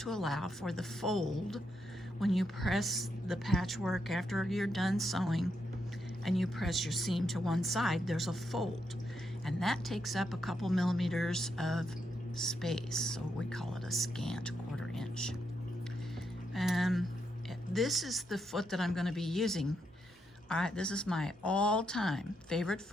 allow for the fold when you press the patchwork after you're done sewing and you press your seam to one side. There's a fold, and that takes up a couple millimeters of space, so we call it a scant 1/4 inch. This is the foot that I'm going to be using. This is my all-time favorite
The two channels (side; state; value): both; normal; correlation 0.81